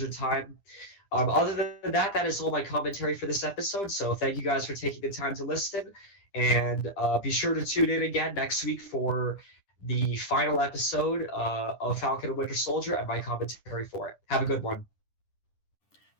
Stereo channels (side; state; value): right; late; 10 ms